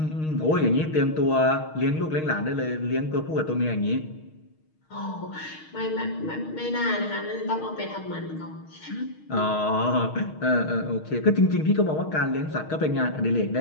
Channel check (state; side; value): late; right; 6.4 ms